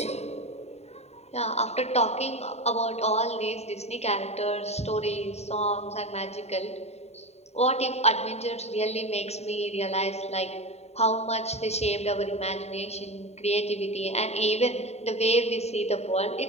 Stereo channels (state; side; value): late; right; 0.31 ms